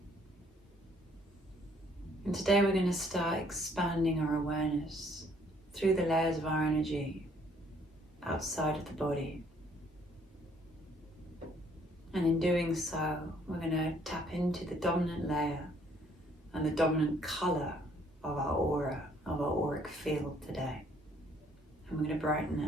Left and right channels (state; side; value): normal; both; correlation 0.63